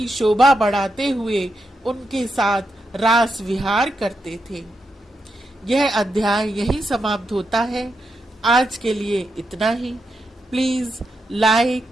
शोभा बढ़ाते हुए उनके साथ रास विहार करते थे। यह अध्याय यहीं समाप्त होता है। आज के लिए इतना ही। Please like,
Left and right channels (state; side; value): normal; both; correlation 0.84